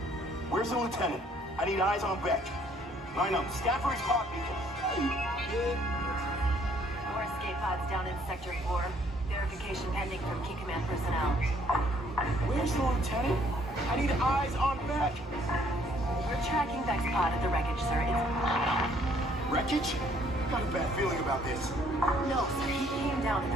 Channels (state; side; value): normal; both; correlation 0.63